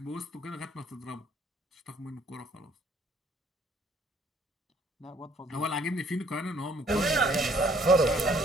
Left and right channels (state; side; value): normal; both; correlation 0.62